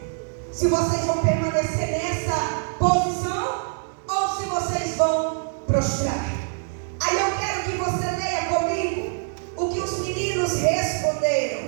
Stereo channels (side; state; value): left; silent; 57 dB below the other